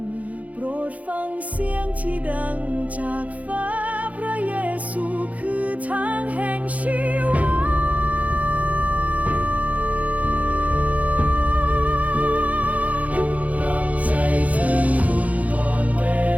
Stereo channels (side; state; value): left; late; 0.071 ms